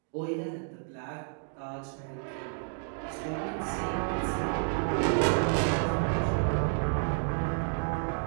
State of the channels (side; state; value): left; silent; 55 dB below the other